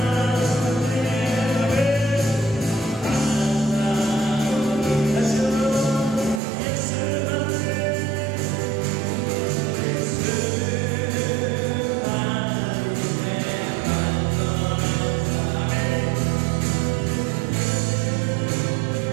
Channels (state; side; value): drops out; left; at 6.4 s